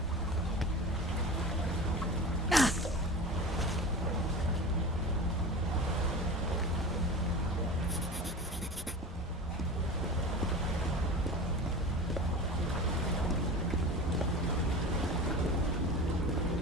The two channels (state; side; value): normal; both; correlation 0.32